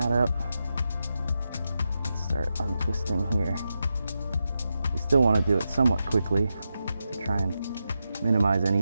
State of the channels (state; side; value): inverted; both; correlation -0.88